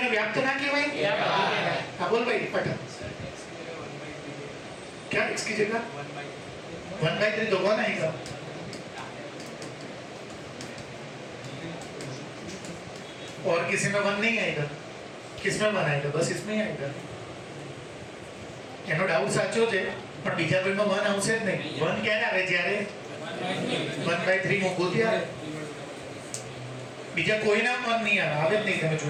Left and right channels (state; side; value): identical; both; correlation 1.00